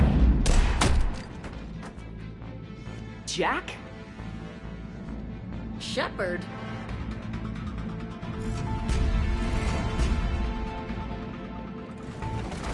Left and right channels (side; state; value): both; identical; correlation 1.00